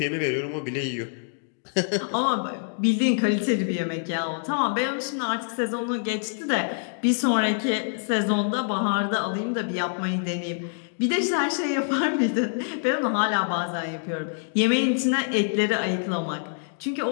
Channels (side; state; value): right; silent; digital silence